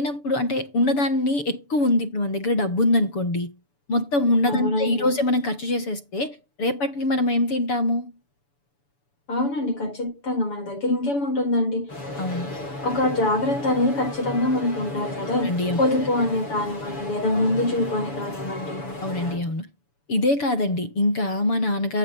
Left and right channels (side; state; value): right; late; 7.0 ms